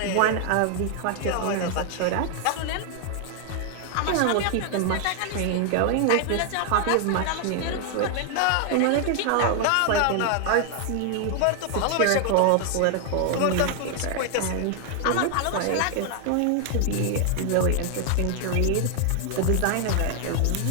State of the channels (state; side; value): different; both; correlation 0.00